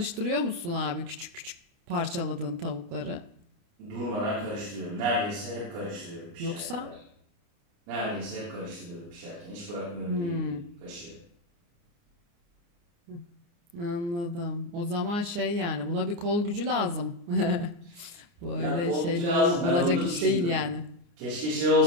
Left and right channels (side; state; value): left; late; 29 ms